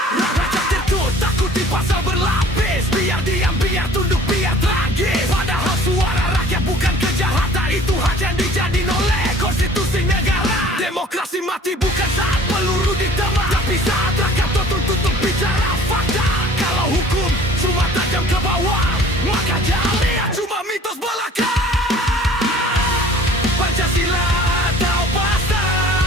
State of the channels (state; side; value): normal; both; correlation 0.50